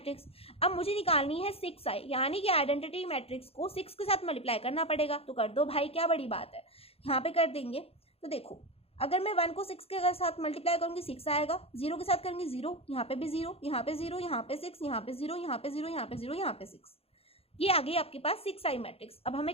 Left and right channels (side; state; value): right; late; 0.28 ms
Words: अब मुझे निकालनी है 6i, यानी कि आइडेंटिटी मैट्रिक्स को 6 के साथ मल्टीप्लाई करना पड़ेगा। तो कर दो भाई, क्या बड़ी बात है, यहाँ पे कर देंगे। तो देखो अगर मैं 1 को 6 के साथ मल्टीप्लाई करूंगी 6 आएगा, 0 के साथ करूंगी 0, यहाँ पे भी 0, यहाँ पे 0, यहाँ पे 6, यहाँ पे 0, यहाँ पे 0, यहाँ पे 0, यहाँ पे 6। ये आ गई आपके पास 6i मैट्रिक्स। अब हमें